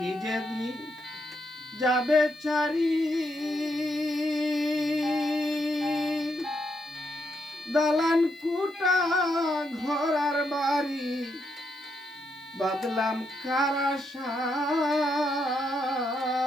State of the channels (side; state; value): left; noise; hiss, 30 dB below the sound